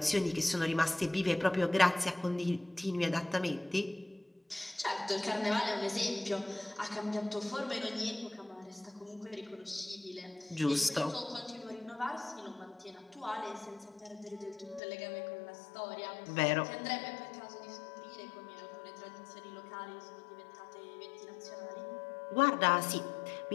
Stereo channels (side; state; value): right; drops out; at 14.8 s